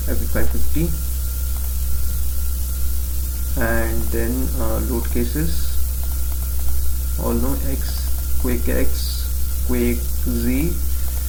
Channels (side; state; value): both; identical; correlation 1.00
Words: FE550, and then load cases, all know X, Quake X, Quake Z,